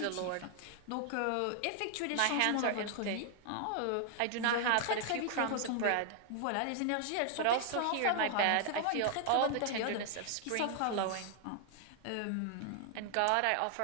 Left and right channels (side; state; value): both; different; correlation 0.00